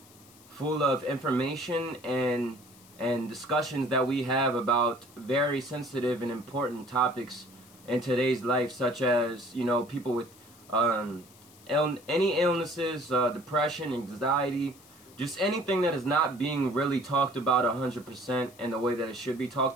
full of information and discussions that we have about very sensitive and important topics in today's life, such as people with any illnesses, depression, anxiety, just anything that is not being really talked about 100% in the way that it should be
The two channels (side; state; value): left; noise; hiss, 24 dB below the sound